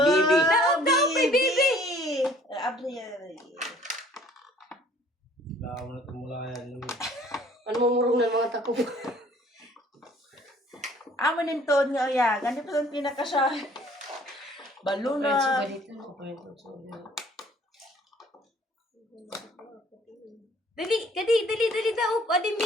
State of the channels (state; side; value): normal; both; correlation 0.56